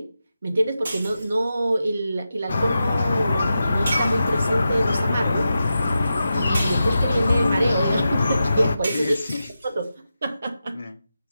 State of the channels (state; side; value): inverted; both; correlation -0.89